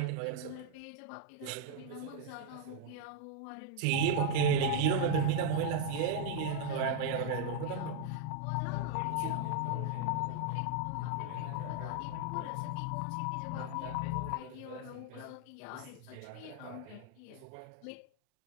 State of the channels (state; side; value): different; both; correlation 0.00